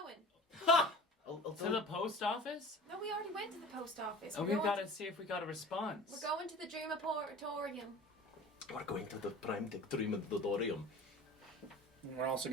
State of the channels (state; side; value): normal; both; correlation 0.40